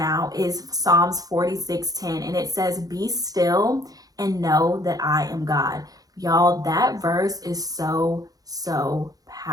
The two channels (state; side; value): late; left; 0.18 ms